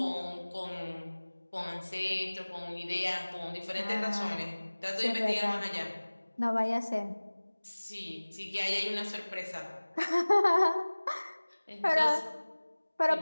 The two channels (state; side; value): inverted; both; correlation -1.00